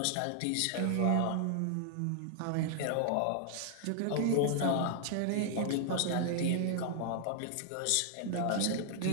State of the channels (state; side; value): different; both; correlation -0.01